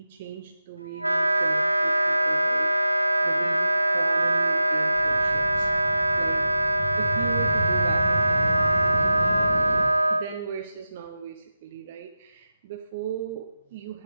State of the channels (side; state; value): both; inverted; correlation -0.94